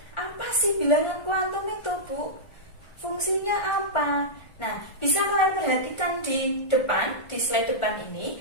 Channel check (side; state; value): right; late; 1.5 ms